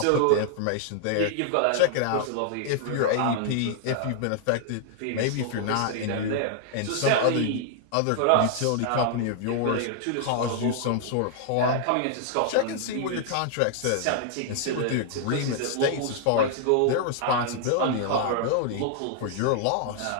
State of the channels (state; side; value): different; both; correlation -0.01